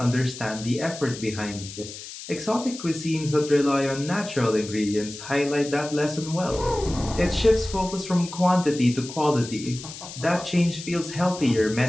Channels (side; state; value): left; noise; hiss, 12 dB below the sound